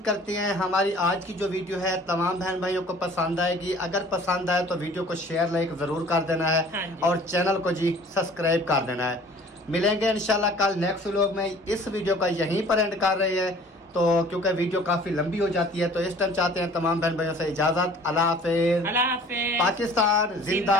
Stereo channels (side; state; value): both; normal; correlation 0.50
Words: करते हैं हमारी आज की जो वीडियो है तमाम बहन भाइयों को पसंद आएगी। अगर पसंद आए तो वीडियो को शेयर लाइक ज़रूर कर देना हाँ है जी। और चैनल को जी सब्सक्राइब कर देना है। मिलेंगे इंशाल्लाह कल नेक्स्ट व्लॉग में। इस वीडियो का यहीं पर एंड कर रहे हैं तो क्योंकि वीडियो काफ़ी लंबी हो जाती है, तो इस टाइम चाहते हैं तमाम बहन भाइयों से इजाज़त। अल्लाह हाफिज़। अल्लाह हाफिज़। पाकिस्तान